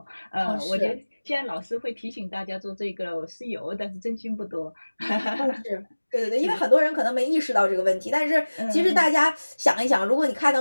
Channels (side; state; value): both; inverted; correlation -1.00